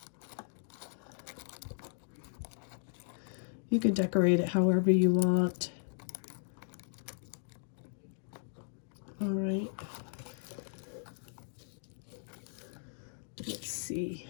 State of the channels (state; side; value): silent; right; digital silence